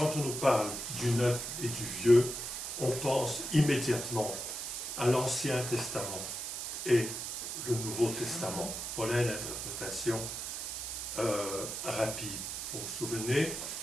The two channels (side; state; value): right; noise; hiss, 5 dB below the sound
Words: on nous parle du neuf et du vieux, on pense immédiatement à l'Ancien Testament et le Nouveau Testament. Voilà une interprétation rapide. Vous vous souvenez